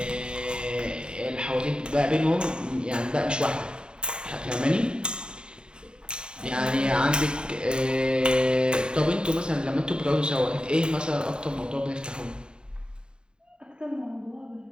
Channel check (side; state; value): left; late; 0.049 ms